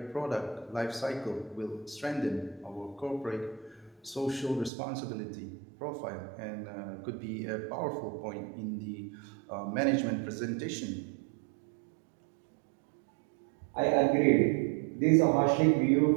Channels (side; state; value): left; drops out; at 4.7 s